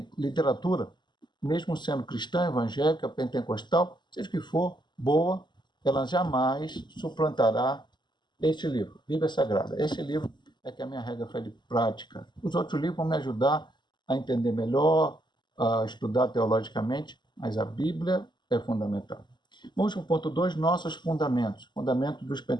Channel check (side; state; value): right; late; 0.21 ms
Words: literatura, mesmo sendo cristã, evangélica, pentecostal, seja o que for, boa, ela jamais suplantará este livro, Bíblia Sagrada. Este livro é que a minha regra foi de prática. Os outros livros vão me ajudar a entender melhor, a estudar teologicamente, mas a Bíblia é fundamental. Vamos para o ponto 2, nossos fundamentos, fundamentos dos